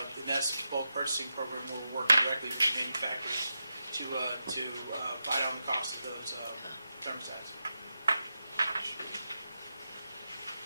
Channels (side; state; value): both; inverted; correlation -0.89